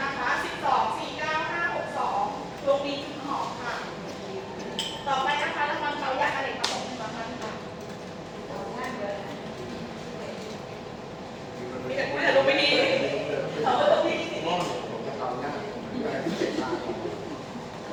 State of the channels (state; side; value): identical; both; correlation 1.00